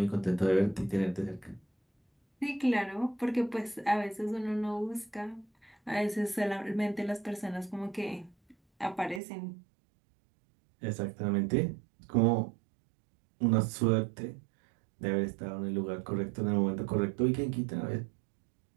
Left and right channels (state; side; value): drops out; left; at 9.2 s